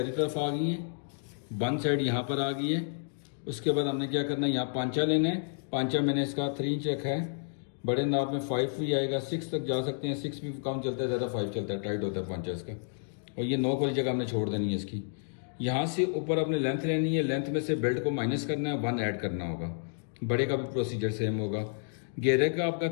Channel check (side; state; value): right; silent; digital silence